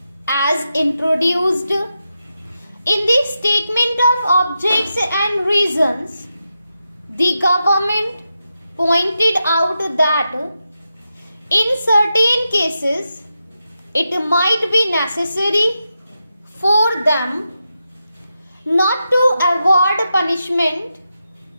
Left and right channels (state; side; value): inverted; both; correlation -0.88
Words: as introduced. In the Statement of Objects and Reasons, the government pointed out that in certain cases it might be necessary for them not to award punishment